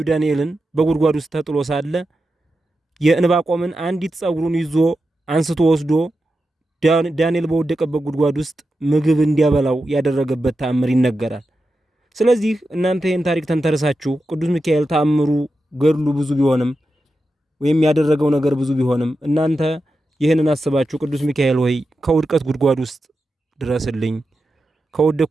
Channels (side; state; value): both; normal; correlation 0.90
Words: ዳንኤልን በጉድጓድ ውስጥ ተጥሎ ሳለ የዕንባቆምን አንዲት ጸጉሩን ይዞ አንስቶ ወስዶ ዳንኤል በወደቀበት ጉድጓድ ውስጥ ምግብ እንዲያበላው ያደረገበት ተአምር ይነገራል። ስለዚህ እናንተ ይህን ታሪክ ተንተርሳችሁ ቅዱስ ሚካኤል ተአምሩ ገድሉ ብዙ ቢሆንም ወይም ያደረገው ነገር ብዙ ቢሆንም እናንተ ይህንን አስባችሁ ቅዱስ ሚካኤል ሆይ ከውድቀት ጉድጓድ ውስጥ ድረስልኝ፣